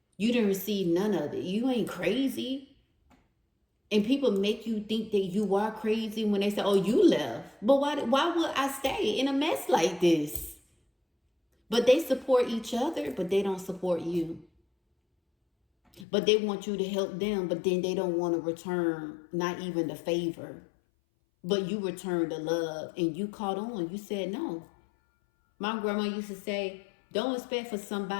You didn't receive none of it. You ain't crazy. And people make you think that you are crazy when they say, oh, you left. But why would I stay in a mess like this? But they support each other, but they don't support you. But they want you to help them, but then they don't want to return not even the favor. But you return the love and you caught on. You said no. My grandma used to say, don't expect for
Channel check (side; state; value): right; drops out; at 16.1 s